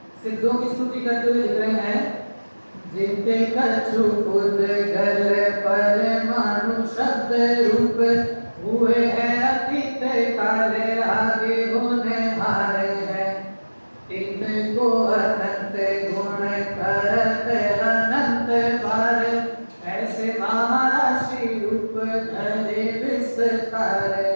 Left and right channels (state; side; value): inverted; both; correlation -1.00